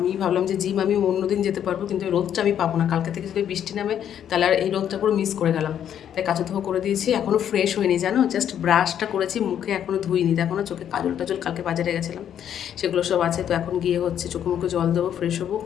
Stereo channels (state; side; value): quieter; right; 9.6 dB